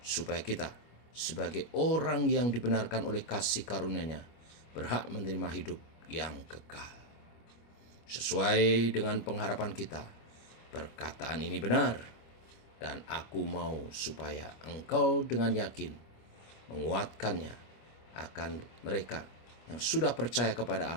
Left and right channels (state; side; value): late; right; 25 ms